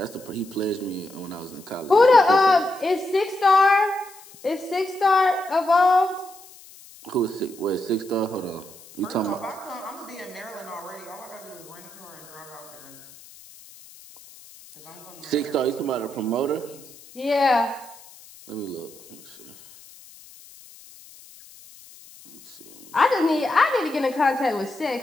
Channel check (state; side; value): noise; left; hiss, 21 dB below the sound